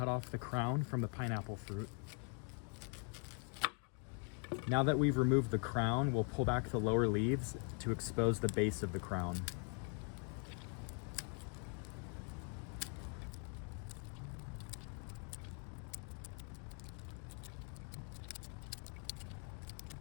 off the crown from the pineapple fruit. Now that we've removed the crown, we'll pull back the lower leaves to expose the base of the crown.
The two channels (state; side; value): quieter; right; 39.7 dB